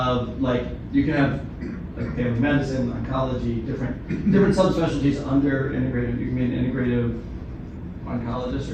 like you can have like family medicine, oncology, different subspecialties under integrative. You can be an integrative oncologist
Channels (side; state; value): both; identical; correlation 1.00